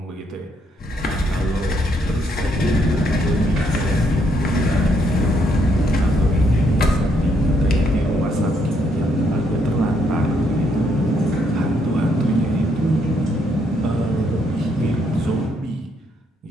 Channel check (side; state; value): both; normal; correlation 0.73